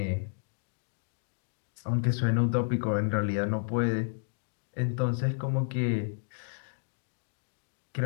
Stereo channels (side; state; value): right; silent; digital silence